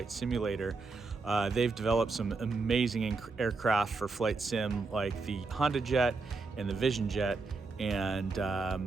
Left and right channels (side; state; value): left; quieter; 4.0 dB